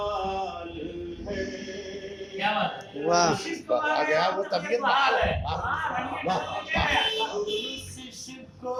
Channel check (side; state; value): both; identical; correlation 1.00